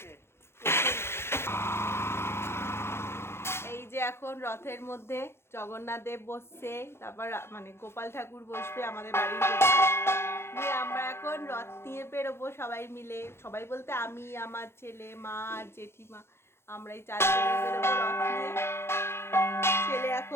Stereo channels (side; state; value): right; late; 0.12 ms